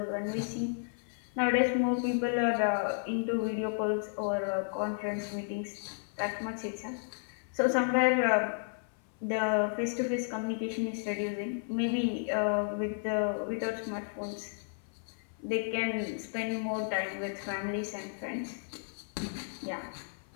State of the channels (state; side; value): silent; right; 55 dB below the other